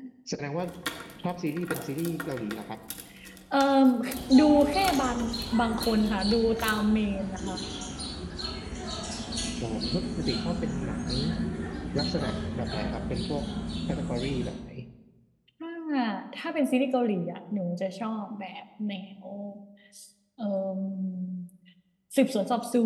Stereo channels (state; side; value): identical; both; correlation 1.00